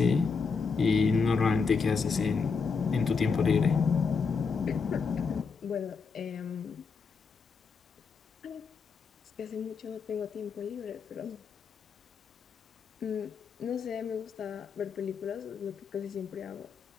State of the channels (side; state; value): right; quieter; 5.2 dB